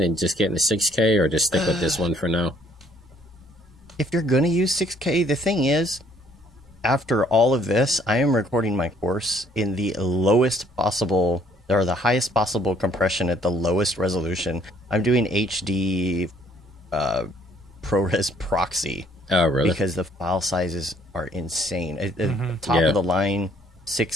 just getting the 6K, or just stick with this one for now? If you're going to use 6K, the thing is, after all of this, I am recording my course in the lowest possible, or the highest possible compression at the lowest resolution. I'm doing HD ProRes proxy. Oh, really? Because the file sizes are insane. Top of the line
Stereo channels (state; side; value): normal; both; correlation 0.62